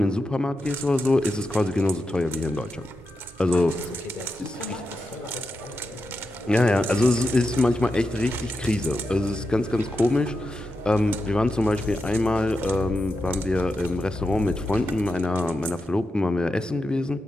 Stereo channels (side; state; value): both; normal; correlation 0.88